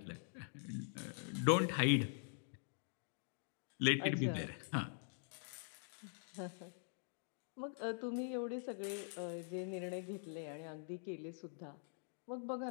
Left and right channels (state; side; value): silent; right; digital silence